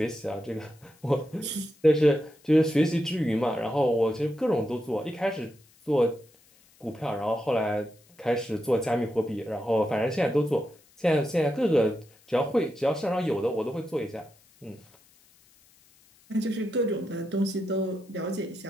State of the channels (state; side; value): noise; left; hiss, 30 dB below the sound